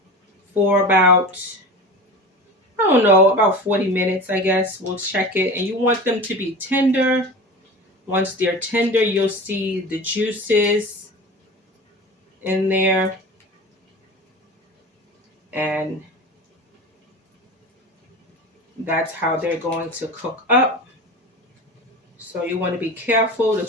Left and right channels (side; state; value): both; normal; correlation 0.32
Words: for about, I don't know, about 40 minutes, I guess. We'll check it. And you want them to be tender. Once they're tender, you'll see the juices in there. And that's how they're going to cook up. So you want to be careful